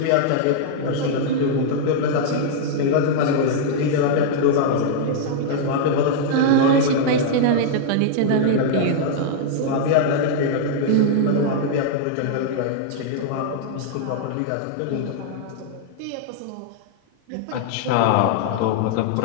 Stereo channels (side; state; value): both; different; correlation -0.01